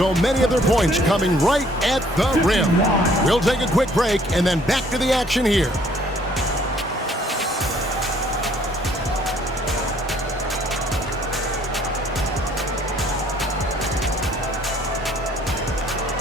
many of their points coming right at the rim. We'll take a quick break and then back to the action here.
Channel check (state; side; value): normal; both; correlation 0.61